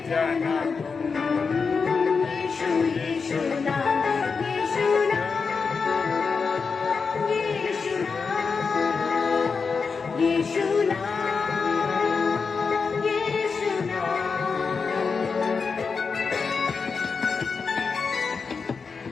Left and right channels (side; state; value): right; quieter; 5.1 dB